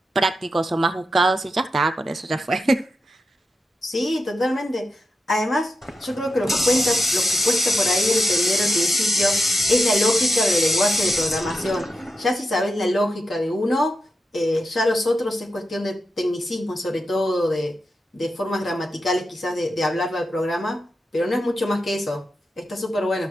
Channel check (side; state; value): both; normal; correlation 0.88